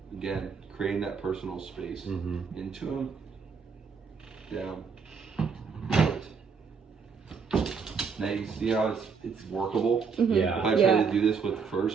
Again, creating that personal space. Into him. Down. Out. Now you see how it's workable? Yeah. If I try to do this with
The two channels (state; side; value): quieter; left; 5.7 dB